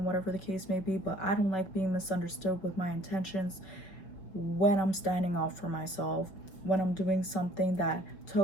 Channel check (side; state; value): right; late; 5.5 ms